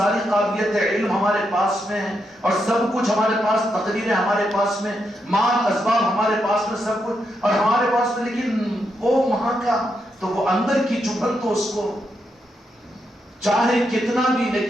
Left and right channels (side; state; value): both; normal; correlation 0.82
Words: قابلیت ہے، علم ہمارے پاس میں ہے اور سب کچھ ہمارے پاس، تقریریں ہمارے پاس میں، مال اسباب ہمارے پاس میں، سب کچھ اور ہمارے پاس میں، لیکن وہ وہاں کا تو وہ اندر کی چبھن تو اس کو چاہے کتنا بھی،